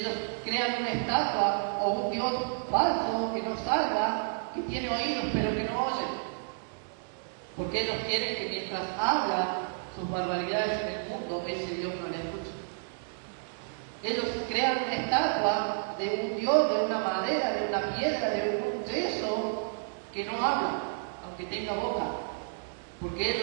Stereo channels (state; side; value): silent; left; digital silence